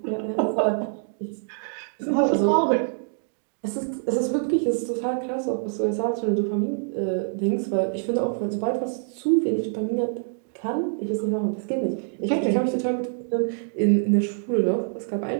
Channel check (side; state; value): left; silent; digital silence